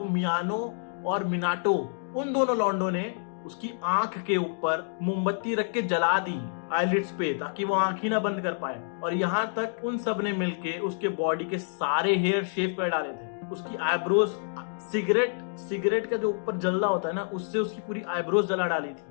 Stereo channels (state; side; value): silent; right; digital silence